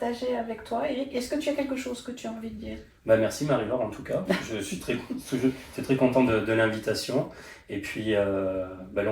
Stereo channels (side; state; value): both; identical; correlation 1.00